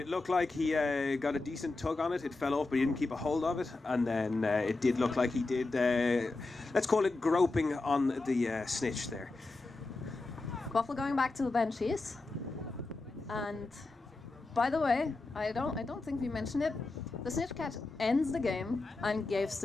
looked like he got a decent tug on it. It fell off, but he didn't keep a hold of it. And then it did look like he did, let's call it groping on the snitch there. Quaffle going back to the Banshees. And by the way, I don't think we mentioned it. The snitch catch ends the game and gives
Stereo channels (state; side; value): quieter; right; 3.3 dB